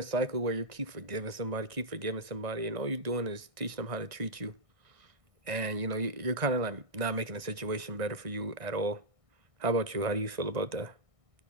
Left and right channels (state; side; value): late; left; 1.6 ms